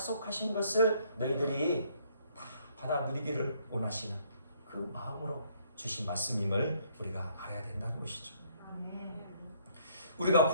것을 너희들이 다 받아 누리기를 원하시는 그 마음으로 주신 말씀임을 우리가 알아야 된다는 것이죠. 우리가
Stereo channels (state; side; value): inverted; both; correlation -0.65